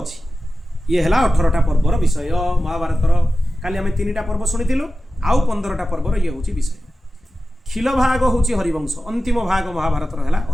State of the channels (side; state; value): both; normal; correlation 0.94